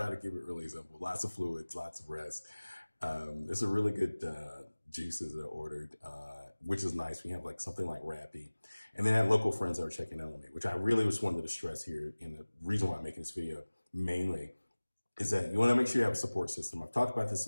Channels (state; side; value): inverted; both; correlation -1.00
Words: to keep it really simple. Lots of fluids, lots of rest. It's a really good juices that I ordered, which is nice. We have like something like Rappy. And then I had local friends that are checking in on me, which I really just wanted to stress here. And the reason why I'm making this video mainly is that you want to make sure you have a support system. I've talked about